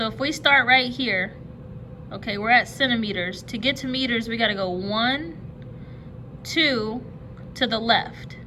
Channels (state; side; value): identical; both; correlation 1.00